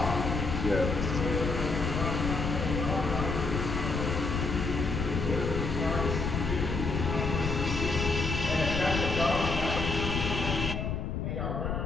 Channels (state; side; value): noise; left; rumble, 2 dB below the sound